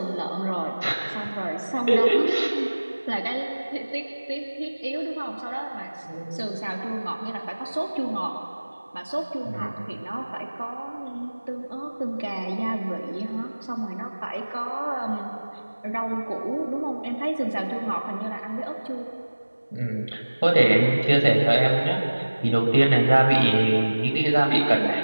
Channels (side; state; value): both; inverted; correlation -1.00